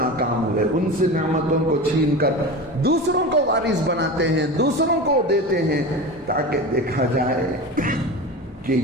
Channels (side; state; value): both; normal; correlation 0.28